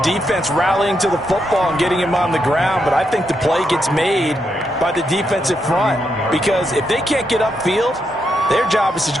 defense rallying to the football and getting him on the ground, but I think the play gets made by the defensive front because if they can't get upfield, their job is to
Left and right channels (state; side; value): normal; both; correlation 0.81